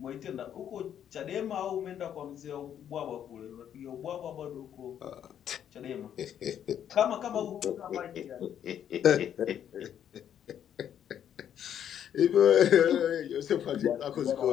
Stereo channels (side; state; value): right; quieter; 9.6 dB